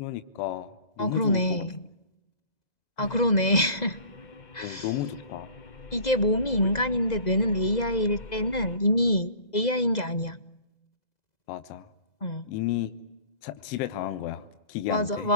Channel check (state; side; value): late; right; 2.0 ms